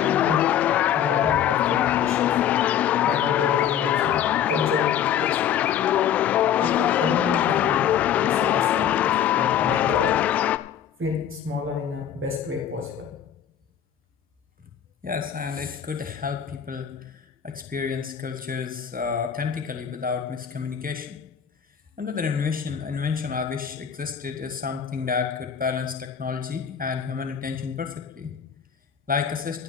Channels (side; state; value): right; quieter; 9.1 dB